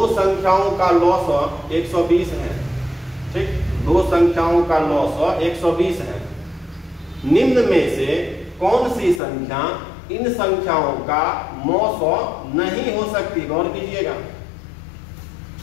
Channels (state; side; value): drops out; right; at 9.2 s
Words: संख्याओं का लॉस 120 है, ठीक, दो संख्याओं का लॉस 120 है। निम्न में से कौन सी संख्या इन संख्याओं का मौसौ नहीं हो सकती, गौर कीजिएगा।